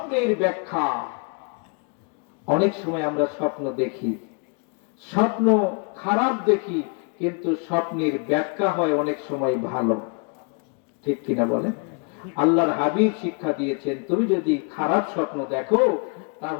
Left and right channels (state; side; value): quieter; right; 37.9 dB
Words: ব্যাখ্যা, অনেক সময় আমরা স্বপ্ন দেখি, স্বপ্ন খারাপ দেখি, কিন্তু স্বপ্নের ব্যাখ্যা হয় অনেক সময় ভালো, ঠিক কিনা বলেন? আল্লাহর হাবিব শিক্ষা দিয়েছেন, তুমি যদি খারাপ স্বপ্ন দেখো